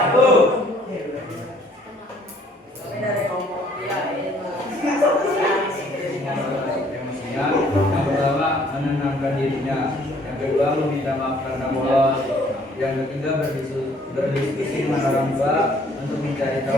emosinya. Yang kedua meminta maaf karena bolos. Yang ketiga berdiskusi dengan orang tua untuk mencari tahu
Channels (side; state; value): both; normal; correlation 0.61